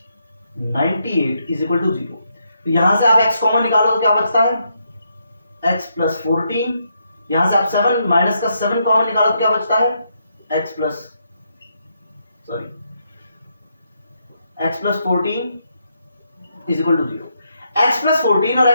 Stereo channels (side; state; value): both; inverted; correlation -0.78